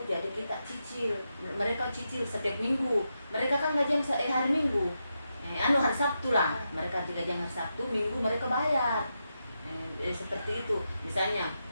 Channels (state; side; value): inverted; both; correlation -0.86